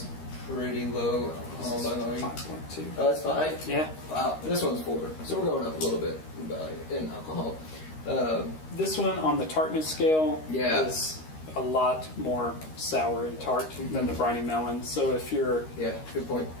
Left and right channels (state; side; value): late; right; 13 ms